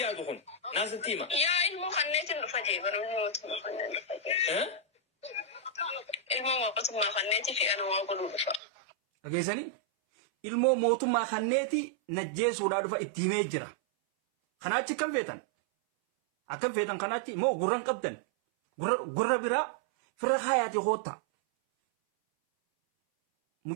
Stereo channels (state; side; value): drops out; left; at 8.6 s